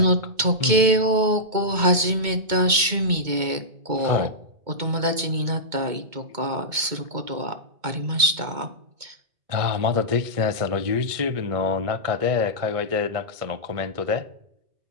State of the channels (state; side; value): late; left; 2.2 ms